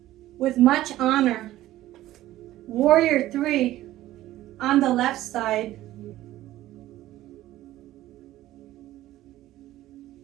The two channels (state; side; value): quieter; left; 14.9 dB